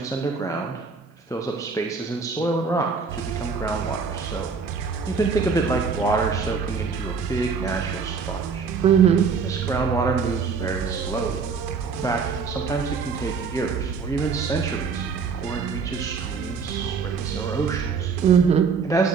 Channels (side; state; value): left; quieter; 5.4 dB